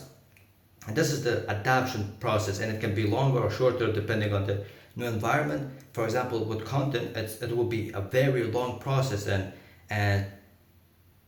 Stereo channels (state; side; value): identical; both; correlation 1.00